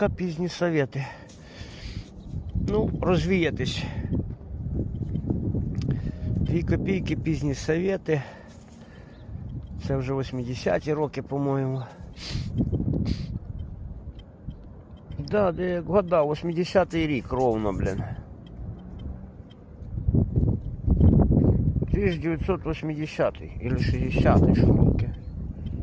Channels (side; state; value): both; identical; correlation 1.00